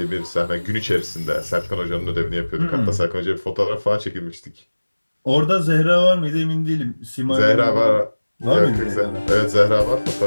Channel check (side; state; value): both; inverted; correlation -1.00